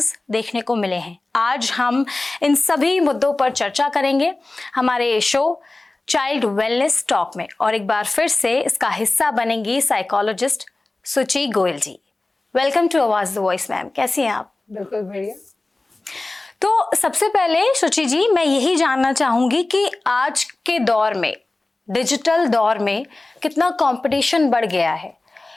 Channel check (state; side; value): quieter; right; 3.0 dB